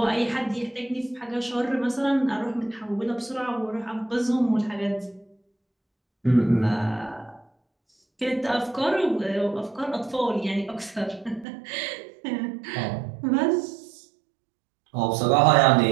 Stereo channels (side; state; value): left; drops out; at 11.5 s